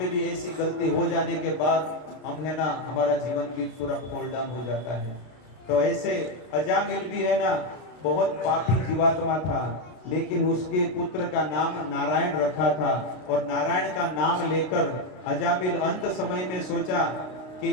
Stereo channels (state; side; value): late; right; 33 ms